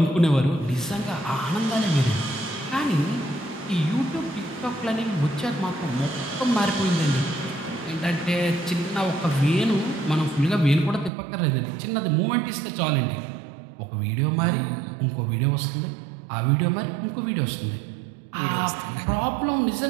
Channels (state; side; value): drops out; left; at 11.1 s